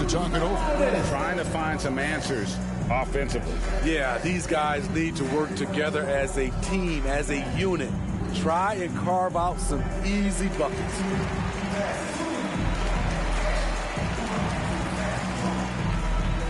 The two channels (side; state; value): both; identical; correlation 1.00